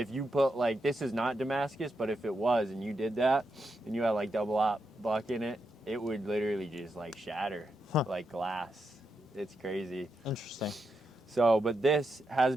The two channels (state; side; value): normal; both; correlation 0.84